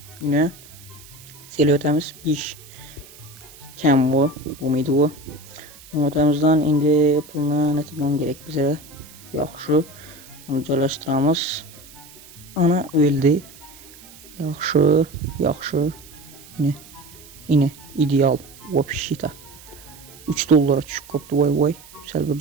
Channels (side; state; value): right; noise; hiss, 21 dB below the sound